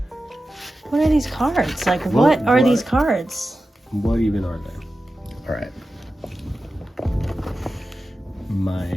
are these cards? Like, what are these cards? What even are they? All right.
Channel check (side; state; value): both; normal; correlation 0.93